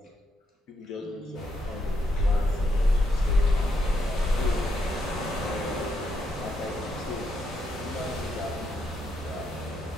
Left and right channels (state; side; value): normal; both; correlation 0.79